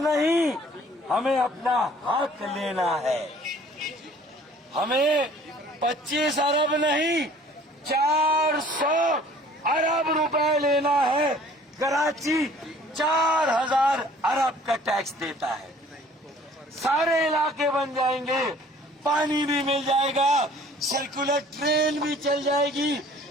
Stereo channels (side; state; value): both; normal; correlation 0.53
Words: ہمیں اپنا حق لینا ہے. ہمیں 25 ارب نہیں 400 ارب روپے لینا ہے. کراچی 4000 ارب کا ٹیکس دیتا ہے. سارے علاقے بن جائیں گے، پانی بھی مل جائے گا، سرکولر ٹرین بھی چل جائے گی،